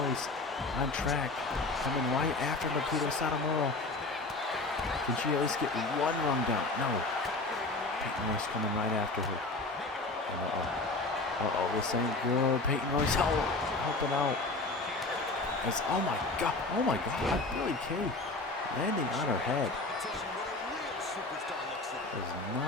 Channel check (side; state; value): right; quieter; 3.2 dB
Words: on track, coming right after Nikita Satomura. Can she at least get one run down? No. Peyton Royce coming right after her. This ain't good. Peyton Royce helping out. Oh my god, Billy Kay landing on her head. That's